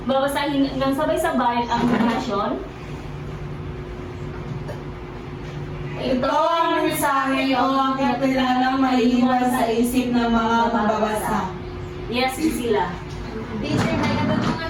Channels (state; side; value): identical; both; correlation 1.00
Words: Babasahin ng sabay-sabay ang definasyon. Ito ang mensahe o ang kapilalang maiiwan sa isip ng mga mababasa. Yes, sila. Teacher, may